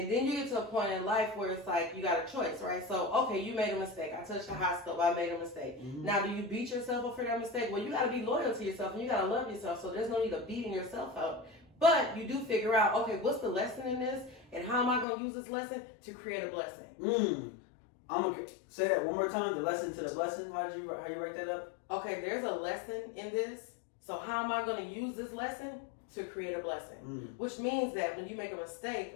then you get to a point in life where it's like you got a choice, right? So, okay, you made a mistake. I touched the hot stove. I made a mistake. Mm-hmm. Now, do you beat yourself up for that mistake? Well, you got to be loyal to yourself and you got to love yourself. So there's no need of beating yourself up. But you do figure out, okay, what's the lesson in this? And how am I going to use this lesson to create a blessing? I'm going to say that one more time. The lesson to the blessing. How you write that up? Okay, there's a lesson in this. So how am I going to use this lesson to create a blessing? Which means that when you make a mistake,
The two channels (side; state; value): right; drops out; at 15.1 s